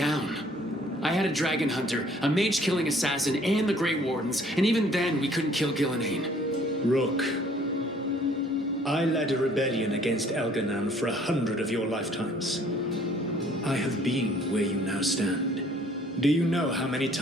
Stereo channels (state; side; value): normal; both; correlation 0.58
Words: I had a dragon hunter, a mage-killing assassin, and the Grey Wardens, and even then we couldn't kill Gillenane. Rook, I led a rebellion against Elganan for 100 of your lifetimes. I have been where you now stand. Do you know how many